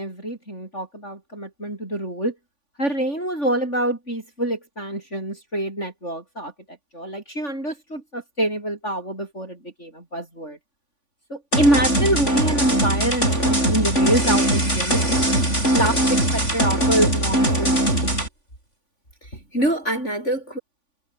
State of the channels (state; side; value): late; right; 3.5 ms